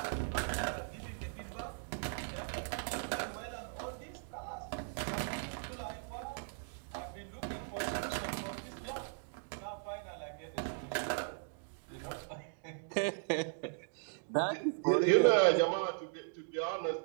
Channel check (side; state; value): left; silent; digital silence